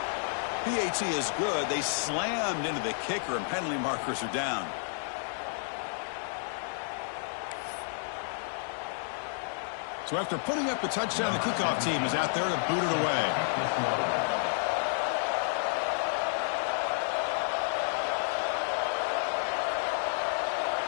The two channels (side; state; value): right; silent; digital silence